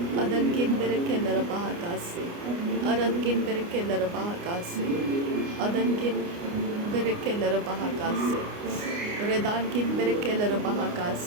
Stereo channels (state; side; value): late; left; 29 ms